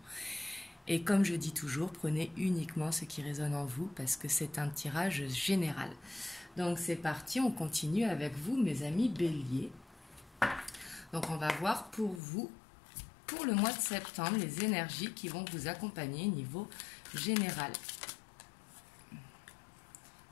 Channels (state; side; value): drops out; right; at 12.2 s